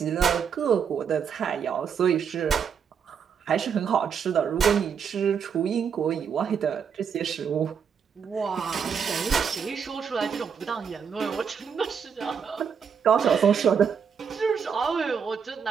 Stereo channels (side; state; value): left; quieter; 6.9 dB